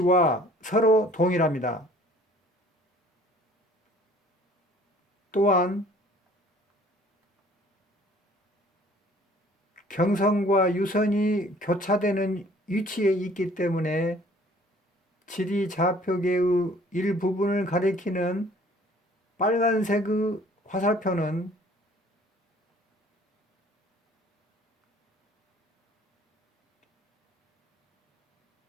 서로 동일합니다. 또한 경선과 유선이 교차되는 위치에 있기 때문에 지리좌표계의 일부분을 가리키는 빨간색의 화살표는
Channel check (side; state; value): both; normal; correlation 0.54